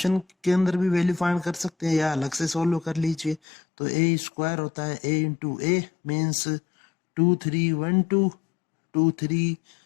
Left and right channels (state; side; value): drops out; right; at 3.4 s